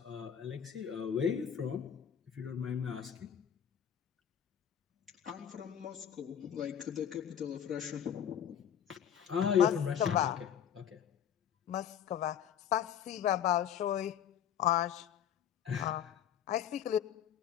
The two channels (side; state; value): right; quieter; 9.2 dB